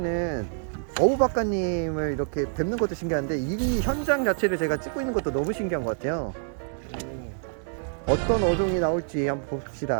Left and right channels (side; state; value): left; silent; 60 dB below the other